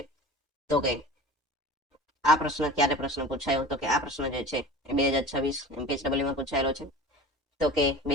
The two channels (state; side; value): normal; both; correlation 0.37